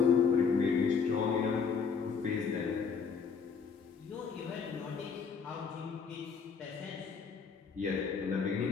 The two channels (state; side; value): quieter; right; 5.8 dB